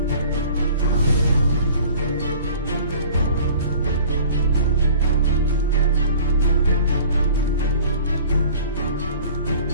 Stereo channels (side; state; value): both; inverted; correlation -0.47